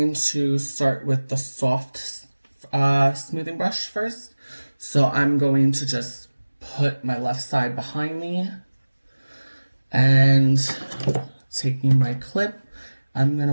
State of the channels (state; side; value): inverted; both; correlation -1.00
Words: to start with the soft smoothing brush first. So I'm going to just put my left side behind me, and taking my clip, I'm going